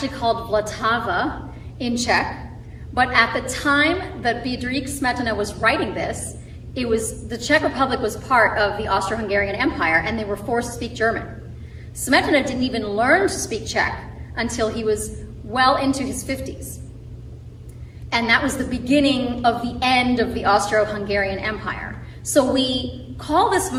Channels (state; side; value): identical; both; correlation 1.00